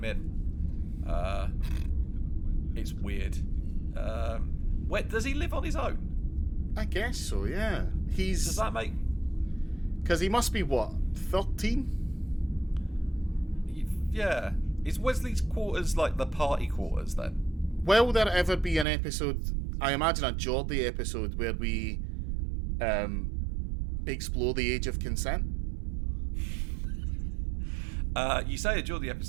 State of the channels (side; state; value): left; drops out; at 18.9 s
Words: in. It's weird. Does he live on his own? I guess so, yeah. Does that make... Because he must be, what, 13? Yeah. Is Wesley's quarters like the party quarters, then? Will there ever be an episode, I imagine a Geordie episode, where we explore the age of consent? You say a Geordie